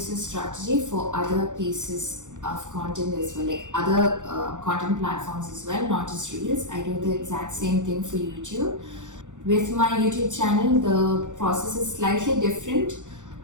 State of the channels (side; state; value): left; late; 0.86 ms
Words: this strategy for other pieces of content as well, like other content platforms as well, not just reels. I do the exact same thing for YouTube. With my YouTube channel, the process is slightly different.